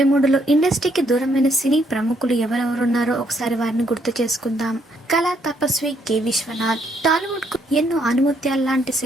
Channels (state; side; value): normal; both; correlation 0.71